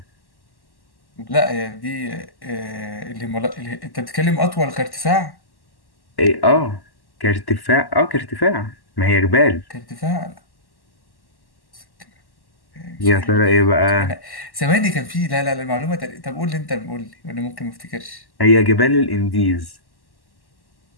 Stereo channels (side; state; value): right; late; 1.1 ms